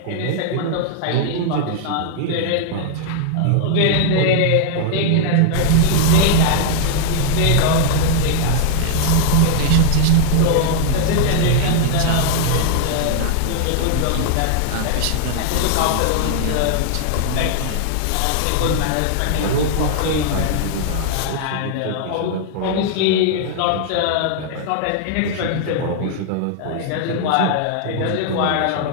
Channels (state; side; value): different; both; correlation 0.00